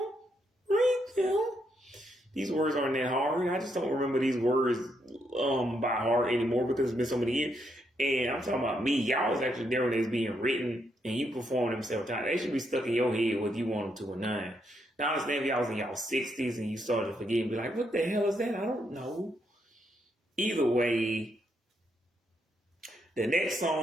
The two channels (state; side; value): normal; both; correlation 0.78